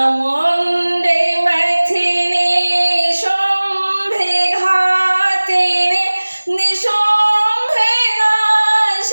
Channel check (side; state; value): both; inverted; correlation -1.00